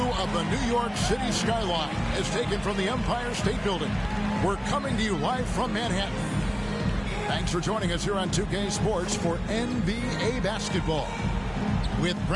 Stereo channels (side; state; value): both; identical; correlation 1.00